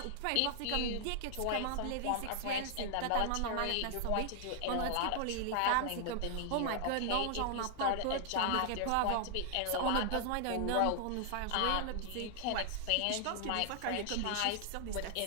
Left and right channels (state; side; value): different; both; correlation 0.00